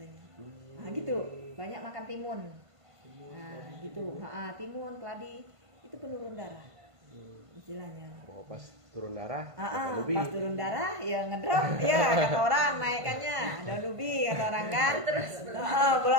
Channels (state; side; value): late; left; 1.5 ms